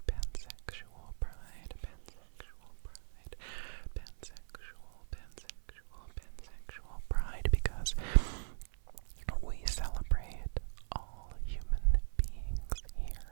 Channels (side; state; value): left; silent; 52 dB below the other